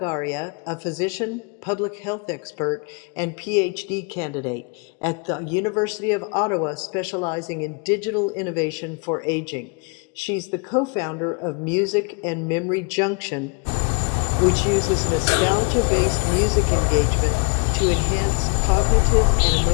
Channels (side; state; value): right; quieter; 35.0 dB